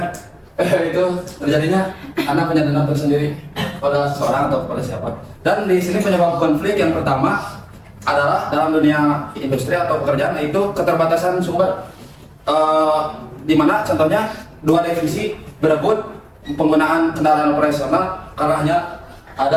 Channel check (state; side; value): identical; both; correlation 1.00